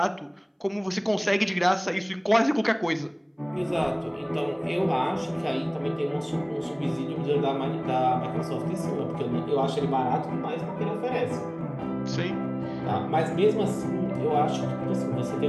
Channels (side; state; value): both; identical; correlation 1.00